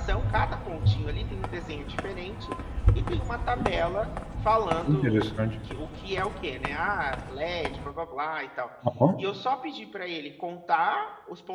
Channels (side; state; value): both; identical; correlation 1.00